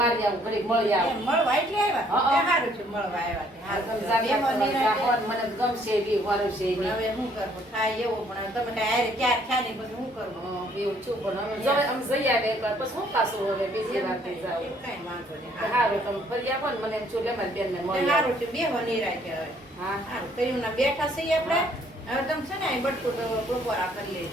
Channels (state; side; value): normal; both; correlation 0.64